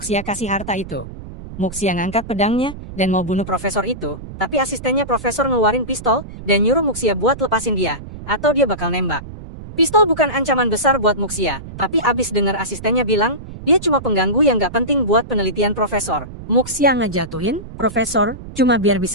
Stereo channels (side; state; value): right; noise; rumble, 13 dB below the sound